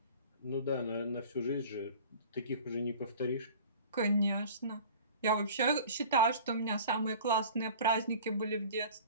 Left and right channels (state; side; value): inverted; both; correlation -0.42